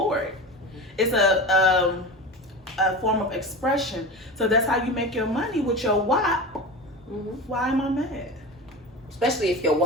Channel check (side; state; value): both; normal; correlation 0.28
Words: it. It's a form of expression. So that's how you make your money with your WAP. Mm-hmm. Why am I mad? Especially if your